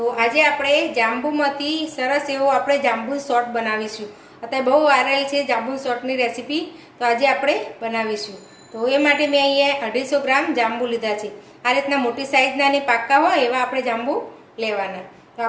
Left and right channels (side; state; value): both; identical; correlation 1.00